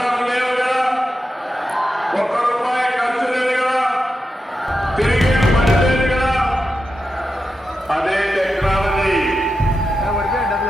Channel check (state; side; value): normal; both; correlation 0.89